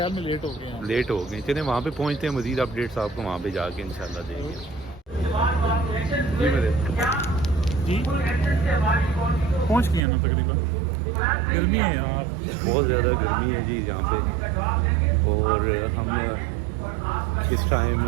میں لیٹ ہو گئے. چلیں وہاں پہ پہنچتے ہیں، مزید اپڈیٹس آپ کو وہاں پہ جا کے انشاءاللہ دیں گے. جی پہنچ گئے نا تقریباً. گرمی ہے یار، بہت زیادہ گرمی ہے جی یہاں پہ. اور ہم اس ٹائم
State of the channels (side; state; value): left; drops out; at 10.0 s